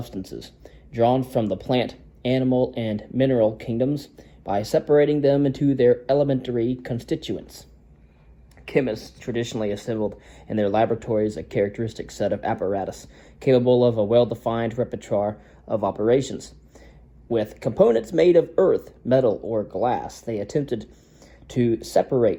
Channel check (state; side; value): identical; both; correlation 1.00